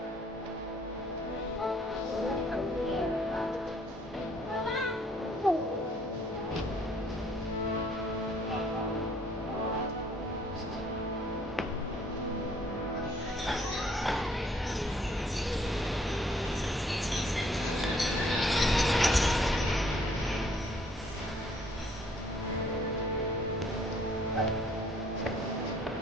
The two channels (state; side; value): normal; both; correlation 0.63